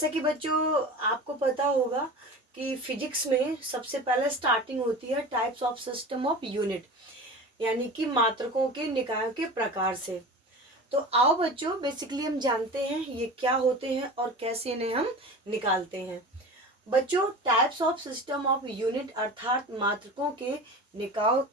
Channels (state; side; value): normal; both; correlation 0.33